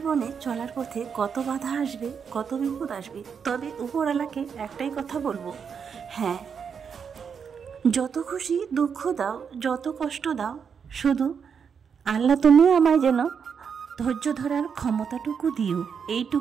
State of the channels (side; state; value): left; quieter; 6.7 dB